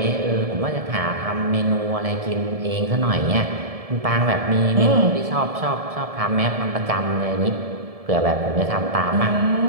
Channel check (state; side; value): late; left; 1.7 ms